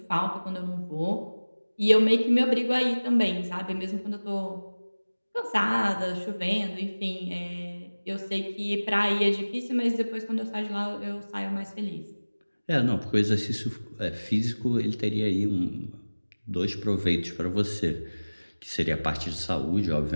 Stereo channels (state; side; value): inverted; both; correlation -1.00